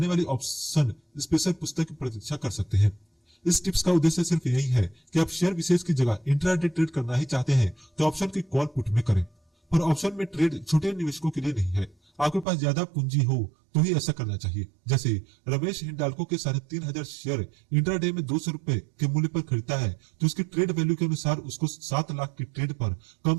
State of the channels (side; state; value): left; drops out; at 12.5 s